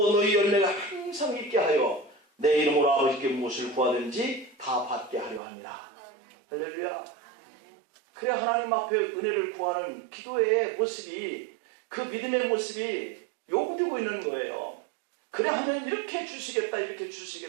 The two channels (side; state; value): left; drops out; at 5.4 s